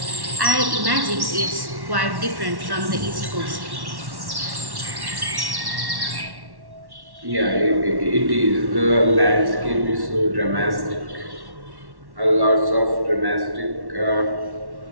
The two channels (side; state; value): left; late; 1.1 ms